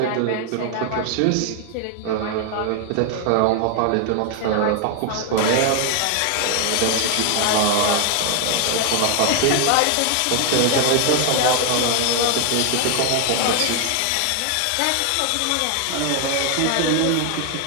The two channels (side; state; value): both; different; correlation 0.00